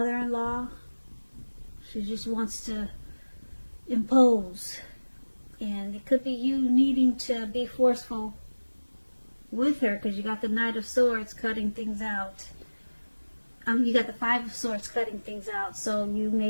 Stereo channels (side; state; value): both; inverted; correlation -1.00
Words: She just wants to impose. And it could be you needing to be forceful with her, because you got the Knight of Swords cutting things out. You got the Five of Swords cutting things out. So you